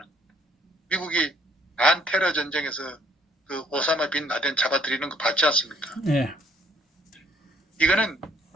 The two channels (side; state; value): both; normal; correlation 0.64